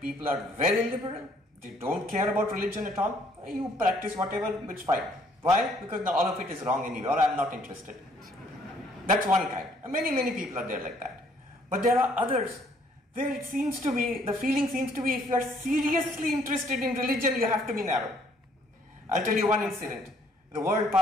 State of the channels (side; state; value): both; normal; correlation 0.64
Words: are very liberal, they don't care about religion at all. You practice whatever, it's fine. Why? Because all of it is wrong anyway, or I'm not interested. That's one kind. And many people are there like that. But there are others where it seems to be, the feeling seems to be, if you are seriously interested in religion, you have to be narrow. I'll tell you one incident. The World